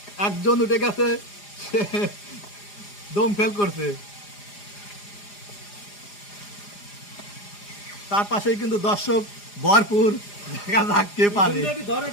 একজন উঠে গেছে সে দম ফেল করছে তার পাশেই কিন্তু দর্শক ভরপুর দেখা যাক কে পারে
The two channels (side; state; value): right; late; 4.9 ms